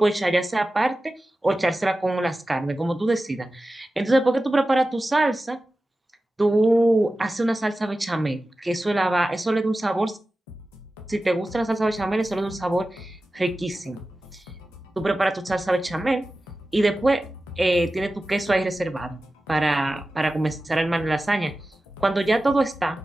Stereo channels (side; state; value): both; normal; correlation 0.95